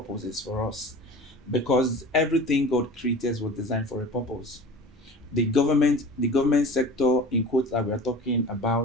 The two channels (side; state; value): both; normal; correlation 0.38